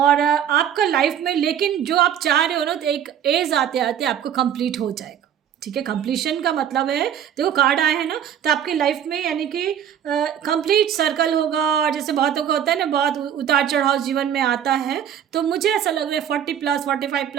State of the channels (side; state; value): left; quieter; 9.4 dB